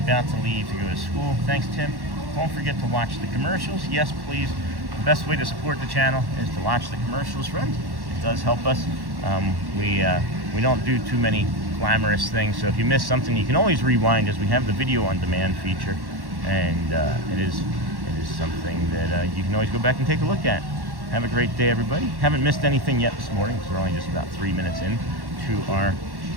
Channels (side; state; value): left; late; 1.1 ms